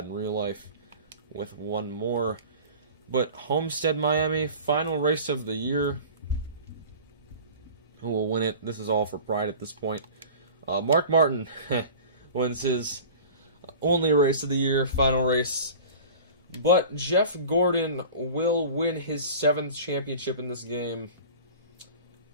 in real life, with 1 more. But Homestead, Miami, final race of the year. Who will win it? This is all for pride at this point. Mark Martin wins his only race of the year, final race. But Jeff Gordon will win his 7th championship in this game.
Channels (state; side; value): inverted; both; correlation -0.39